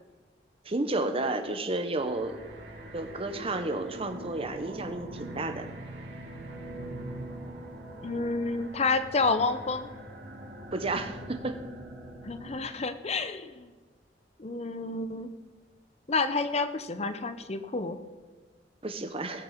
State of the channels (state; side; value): normal; both; correlation 0.13